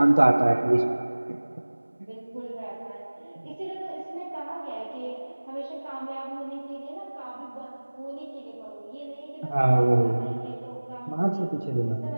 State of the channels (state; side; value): inverted; both; correlation -1.00